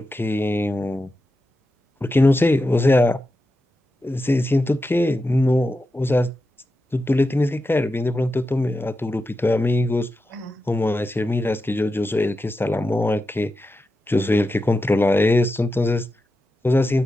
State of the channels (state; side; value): normal; both; correlation 0.90